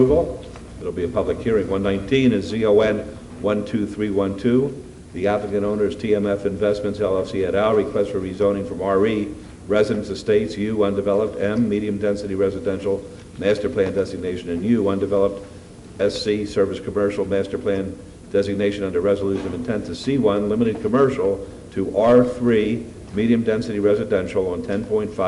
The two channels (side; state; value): both; identical; correlation 1.00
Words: It'll be a public hearing. 119 is ZON 12312. The applicant owner is TMF Investments LLC et al. Request for rezoning from RE, Residence Estates, U, undeveloped, M, medium density residential, master plan designation, and U, undeveloped, SC, service commercial, master plan designation under resolution of intent to C1, limited commercial, to R3, medium density residential on